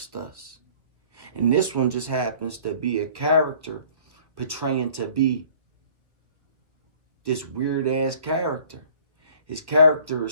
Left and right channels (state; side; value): late; left; 1.3 ms